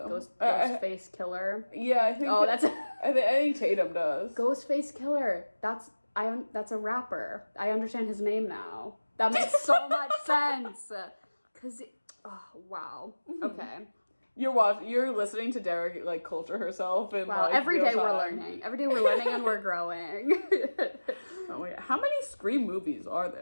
Ghostface Killer. Yeah, I think. Oh, that's. I think Tatum does. Ghostface Killer. That's That's a rapper. I understand his name now. That makes so much sense. Cause, oh wow. Okay. You're listening to Derek like culture herself and Wow. like Every real day we're time. learning. Every day we're learning and we're growing. Oh my God. How many Scream movies are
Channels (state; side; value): inverted; both; correlation -1.00